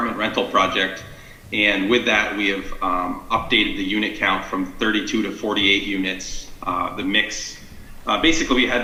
rental project. And with that, we have updated the unit count from 32 to 48 units. The mix, basically we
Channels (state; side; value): identical; both; correlation 1.00